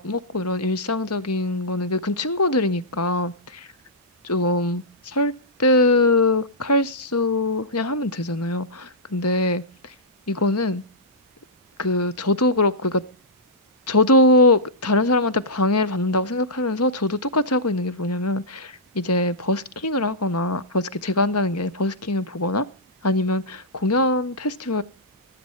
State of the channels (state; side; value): normal; both; correlation -0.12